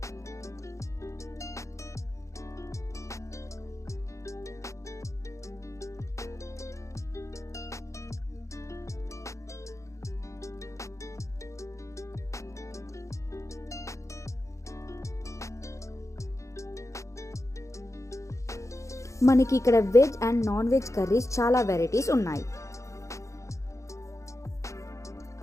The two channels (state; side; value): late; right; 0.15 ms